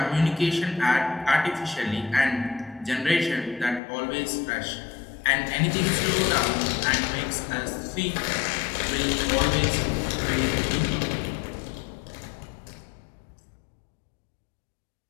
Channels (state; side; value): drops out; right; at 3.8 s